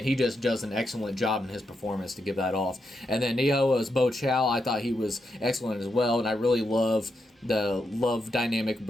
he just does an excellent job in his performance to give that off. And then Neo as Bo Chow, I thought he was excellent as well. And I really love the love dynamic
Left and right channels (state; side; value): normal; both; correlation 0.84